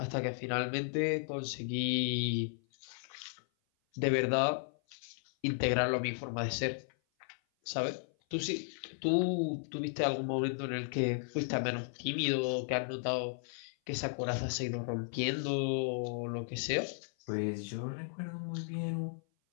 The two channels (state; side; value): silent; right; 54 dB below the other